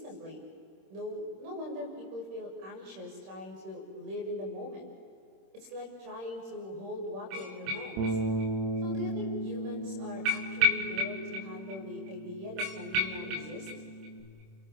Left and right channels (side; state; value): left; late; 26 ms